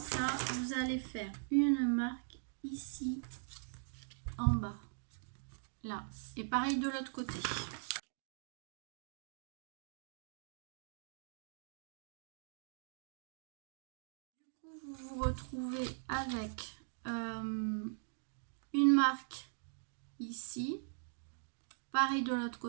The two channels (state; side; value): silent; left; digital silence